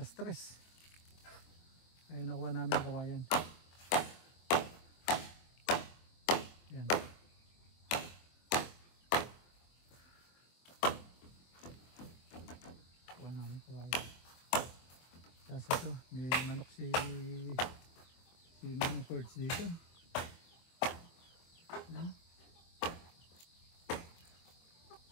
3. Ay nakuha namin kawayan. Ayan. Nakuha namin kawayan. Tapos ito, may manok si Manong Perch dito. Ayan.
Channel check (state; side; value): late; right; 24 ms